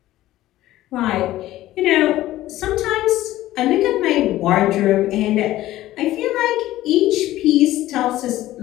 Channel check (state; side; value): quieter; right; 15.2 dB